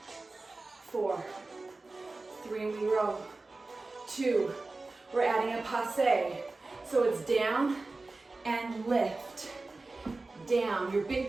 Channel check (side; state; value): left; quieter; 3.4 dB